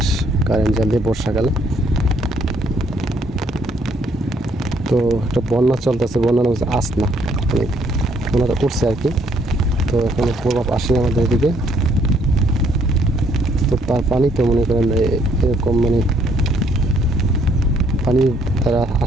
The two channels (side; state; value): both; normal; correlation 0.67